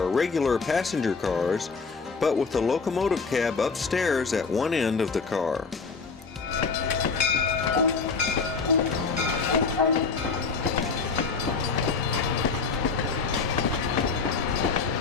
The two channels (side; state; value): right; quieter; 4.8 dB